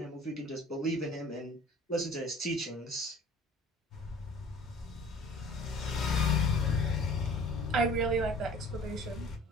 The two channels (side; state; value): both; normal; correlation 0.49